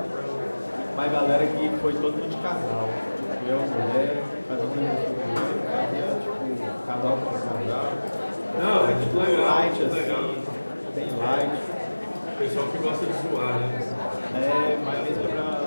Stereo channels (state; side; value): inverted; both; correlation -1.00